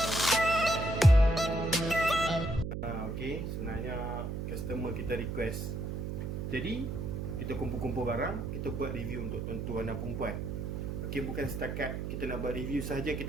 Okey, sebenarnya customer kita request. Jadi kita kumpul-kumpul barang, kita buat review untuk tuan-tuan dan perempuan. Okey, bukan setakat kita nak buat review saja,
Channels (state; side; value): noise; right; hum, 4 dB below the sound